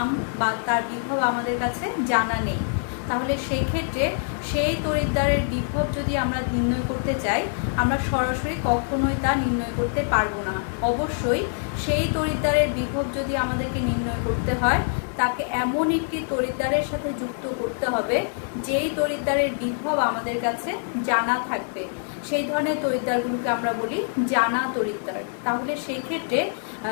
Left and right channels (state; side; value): silent; right; digital silence